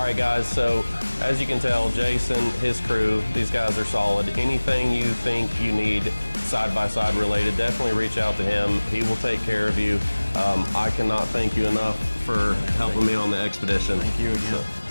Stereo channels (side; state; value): both; inverted; correlation -1.00